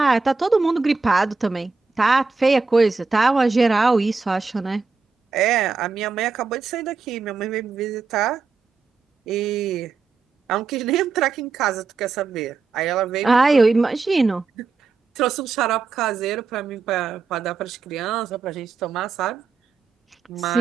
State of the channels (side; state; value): left; quieter; 4.5 dB